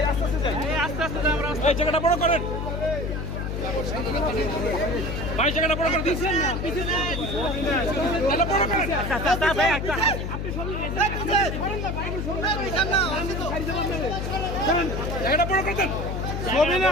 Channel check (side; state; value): left; noise; hum, 3 dB below the sound